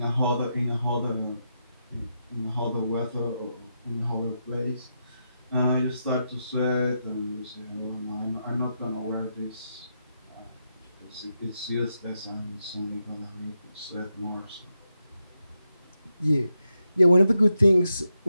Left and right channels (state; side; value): inverted; both; correlation -0.85